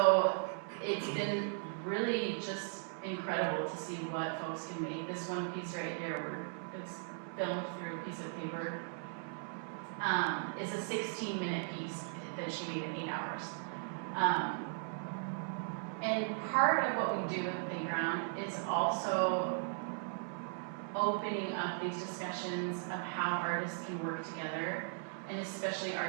it's been really just incredible to see what folks can make. This one piece right here, where it's filmed through a piece of paper, is a 16-minute piece that she made in 8 hours. And part of what we do at Playground is also opening up these discussions of how artists can work together, and especially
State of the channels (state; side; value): silent; left; 53 dB below the other